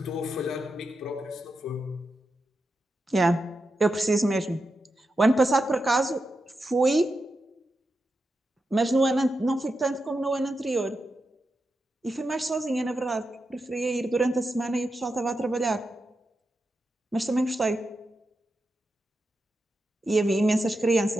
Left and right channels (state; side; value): normal; both; correlation 0.88